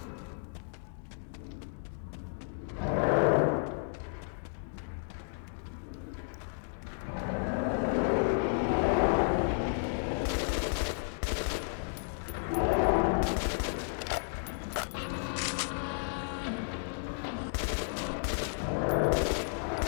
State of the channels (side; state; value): right; silent; digital silence